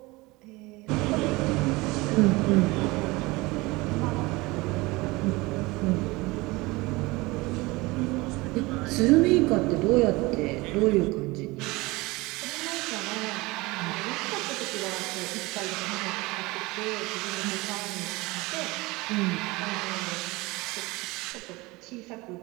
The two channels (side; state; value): left; quieter; 22.5 dB